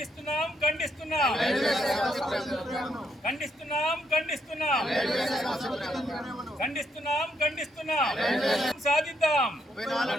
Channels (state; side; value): normal; both; correlation 0.75